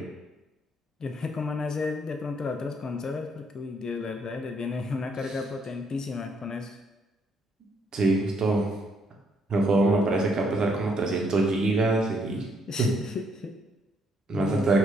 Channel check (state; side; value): normal; both; correlation 0.71